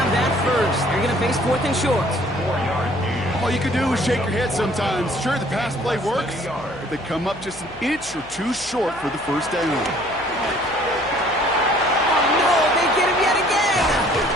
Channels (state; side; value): noise; left; hum, 22 dB below the sound